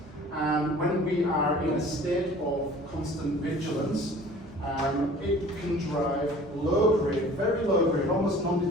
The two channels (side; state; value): both; normal; correlation 0.48